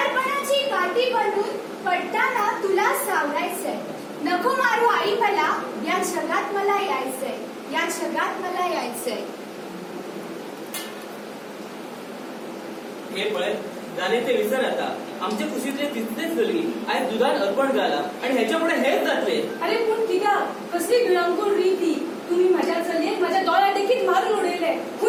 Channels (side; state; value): both; identical; correlation 1.00